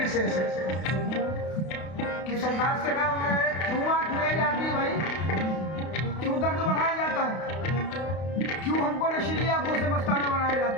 से कि सरकार से कहा उन्होंने, क्यों आँख मिलाई जाती है भाई, क्यों दर्द बढ़ाया जाता है, क्यों हमको नशीली आंखों से मस्ताना बनाया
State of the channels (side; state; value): right; late; 32 ms